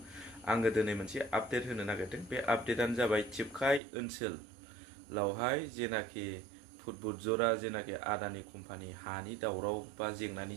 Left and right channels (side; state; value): left; drops out; at 3.8 s